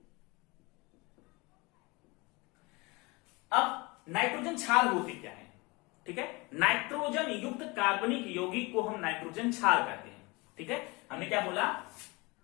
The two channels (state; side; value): quieter; right; 25.6 dB